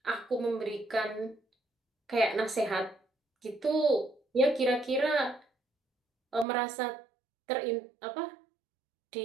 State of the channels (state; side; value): drops out; left; at 6.5 s